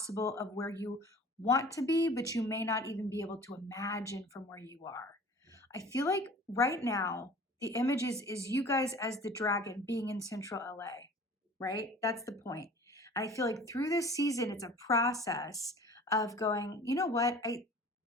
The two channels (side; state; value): both; normal; correlation 0.45